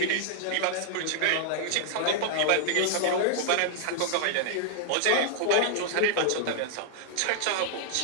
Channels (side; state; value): both; different; correlation -0.01